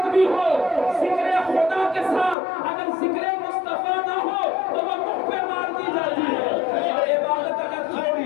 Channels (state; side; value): drops out; right; at 2.4 s